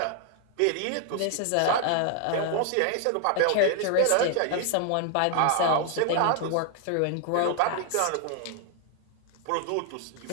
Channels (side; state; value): both; different; correlation 0.00